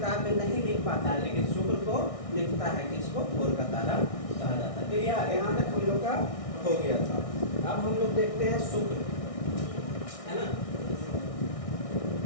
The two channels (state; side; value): late; right; 1.6 ms